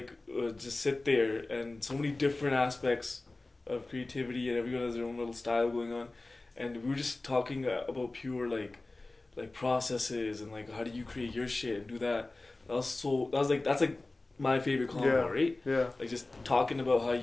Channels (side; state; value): right; quieter; 3.1 dB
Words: just sit there, and so many different aspects of creativity, and everyone has their own little style going on, and we were just talking about pure like processes and like how do you create your shit and do that. That's like my favorite combo, right? Yeah. Like just talking about how